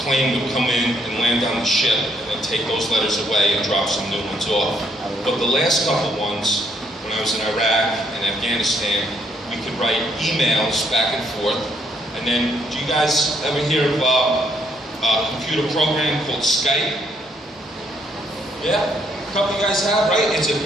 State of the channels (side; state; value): both; normal; correlation 0.70